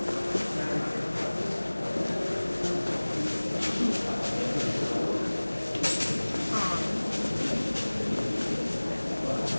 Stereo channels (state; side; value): inverted; both; correlation -1.00